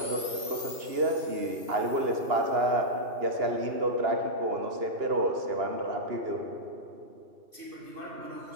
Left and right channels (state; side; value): late; left; 2.9 ms